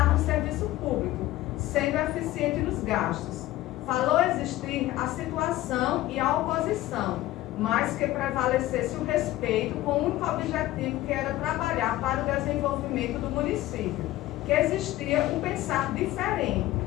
no serviço público, sendo eficiente nos gastos. Falou existir a situação e a oposição, mas que prevalecesse o respeito com o único objetivo que era trabalhar para o desenvolvimento do município, que existia um pensar diferente,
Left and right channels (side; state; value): right; quieter; 16.0 dB